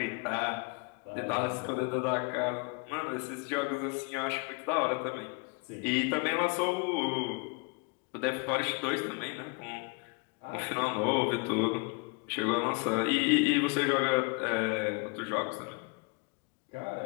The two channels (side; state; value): right; quieter; 31.4 dB